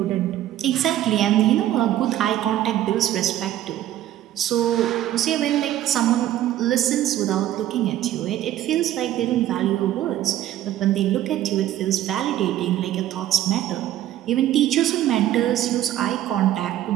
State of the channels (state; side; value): quieter; left; 12.8 dB